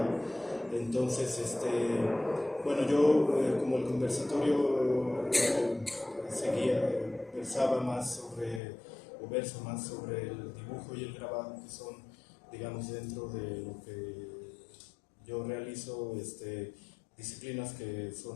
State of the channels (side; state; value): right; drops out; at 8.6 s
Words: Entonces, bueno, yo como el conversatorio verso más sobre el dibujo y el grabado, que son, digamos, dentro de lo que yo realizo, disciplinas que